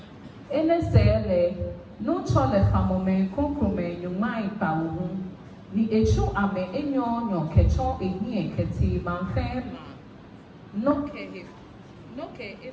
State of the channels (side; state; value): both; identical; correlation 1.00